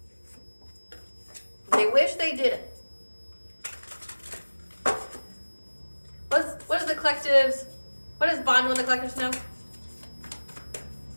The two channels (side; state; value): both; inverted; correlation -1.00